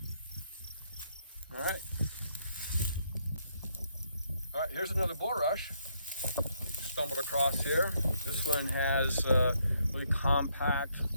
All right, here's another bulrush stumbled across here. This one has really compact,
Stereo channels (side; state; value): both; inverted; correlation -0.72